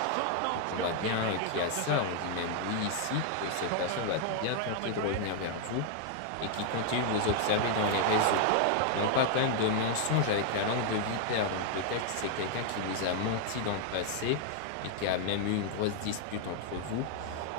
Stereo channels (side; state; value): both; different; correlation 0.00